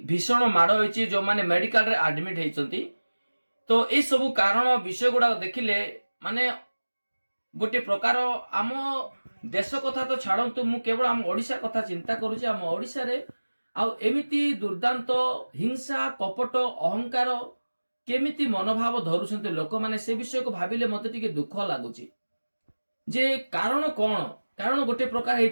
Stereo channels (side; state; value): both; inverted; correlation -1.00